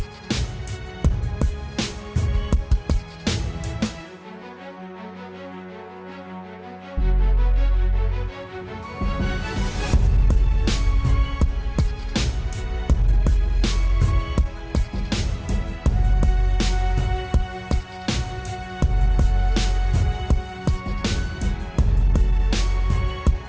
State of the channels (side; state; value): both; identical; correlation 1.00